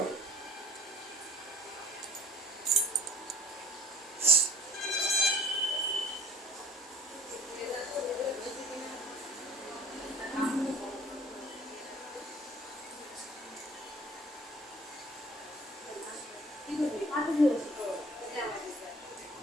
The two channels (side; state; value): both; normal; correlation 0.51